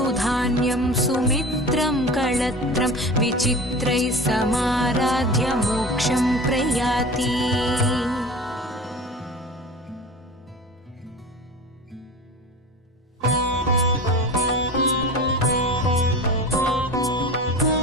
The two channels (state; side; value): normal; both; correlation 0.34